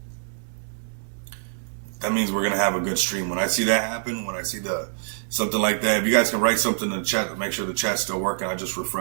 that means we're gonna have a good stream. When I see that happen, when I see the something like that, if you guys can write something in the chat to make sure the chat's still working. I just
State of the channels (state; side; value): silent; left; 62 dB below the other